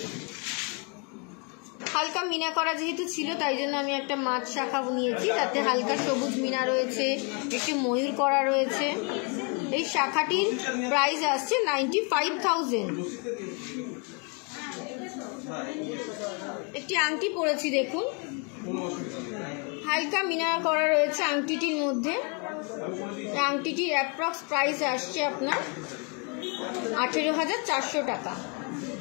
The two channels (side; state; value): right; quieter; 35.6 dB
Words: হালকা মিনা করা যেহেতু ছিল তাই জন্য আমি একটা মাছ শাখা নিয়েছি, তাতে হালকা সবুজ মিনা রয়েছে, একটি ময়ূর করা রয়েছে। এই শাখাটির প্রাইস আসছে 95,000। একটি আংটি পরেছি দেখুন, হালকা মিনা করা রয়েছে আংটিটির মধ্যে। আংটিটির অ্যাপ্রক্স প্রাইস আসছে আপনার 18,400 টাকা।